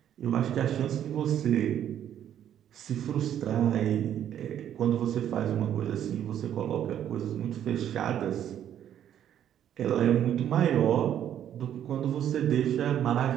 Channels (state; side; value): quieter; left; 10.3 dB